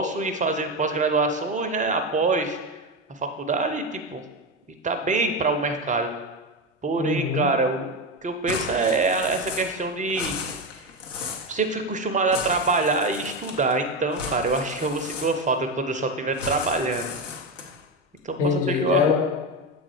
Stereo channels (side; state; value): both; normal; correlation 0.15